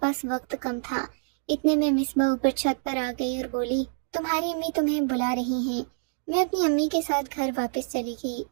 وقت کم تھا۔ اتنے میں مصباح اوپر چھت پر آ گئی اور بولی تمہاری امی تمہیں بلا رہی ہیں۔ میں اپنی امی کے ساتھ گھر واپس چلی گئی،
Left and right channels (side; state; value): left; silent; digital silence